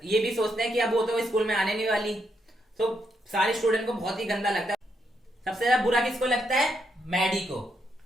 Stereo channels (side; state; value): both; normal; correlation 0.79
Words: ये भी सोचते हैं कि अब वो तो स्कूल में आने नहीं वाली. तो सारे स्टूडेंट को बहुत ही गंदा लगता है. सबसे ज्यादा बुरा किसको लगता है? मैडी को.